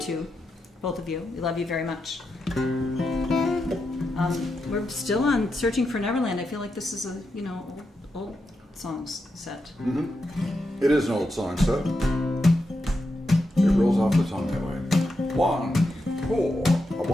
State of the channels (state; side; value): normal; both; correlation 0.86